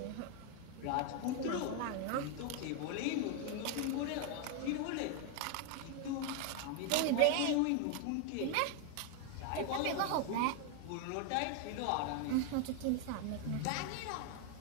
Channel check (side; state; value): both; different; correlation 0.01